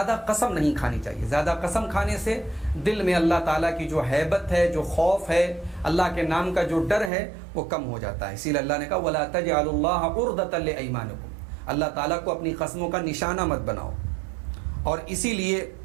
قسم نہیں کھانی چاہیے۔ زیادہ قسم کھانے سے دل میں اللہ تعالیٰ کی جو ہیبت ہے، جو خوف ہے، اللہ کے نام کا جو ڈر ہے وہ کم ہو جاتا ہے۔ اسی لیے اللہ نے کہا وَلَا تَجْعَلُوا اللَّهَ عُرْضَةً لِأَيْمَانِكُمْ، اللہ تعالیٰ کو اپنی قسموں کا نشانہ مت بناؤ۔ اور اسی لیے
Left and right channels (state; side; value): drops out; left; at 7.1 s